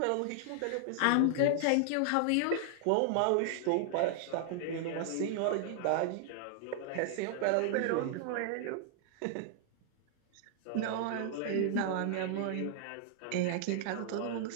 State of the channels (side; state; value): both; different; correlation -0.01